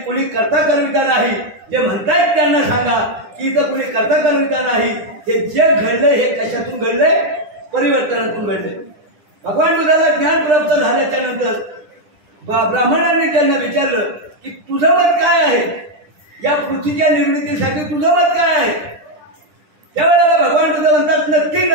कर्ता कर्मिता नाही. जे म्हणतायत त्यांना सांगा की इथं कुणी कर्ता कर्मिता नाही. हे जे घडलंय हे कशातून घडलंय? परिवर्तनातून घडलंय. भगवान बुद्धाला ज्ञान प्राप्त झाल्याच्या नंतर ब्राह्मणांनी त्यांना विचारलं की तुझं मत काय आहे? या पृथ्वीच्या निर्मितीसाठी तुझं मत काय आहे? त्यावेळेला भगवान बुद्ध म्हणतात नक्की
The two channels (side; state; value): left; late; 10 ms